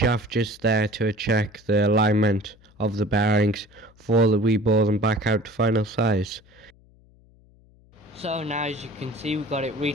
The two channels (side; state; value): left; noise; hum, 29 dB below the sound